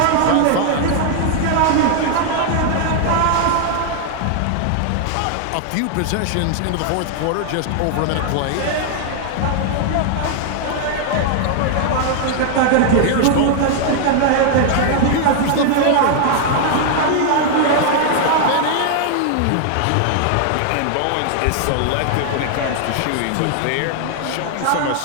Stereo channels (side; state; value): both; different; correlation 0.00